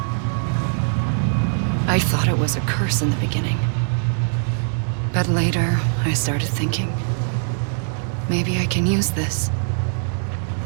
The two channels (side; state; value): left; silent; 64 dB below the other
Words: I thought it was a curse in the beginning. But later, I started thinking, maybe I can use this.